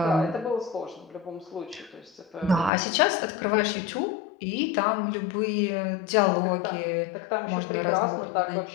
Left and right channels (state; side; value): drops out; right; at 2.7 s